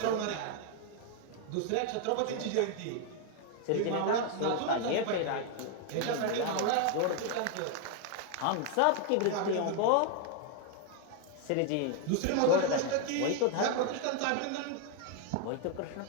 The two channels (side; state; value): both; different; correlation 0.01